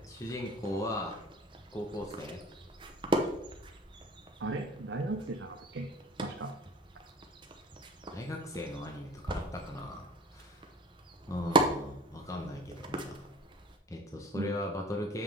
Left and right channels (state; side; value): normal; both; correlation 0.43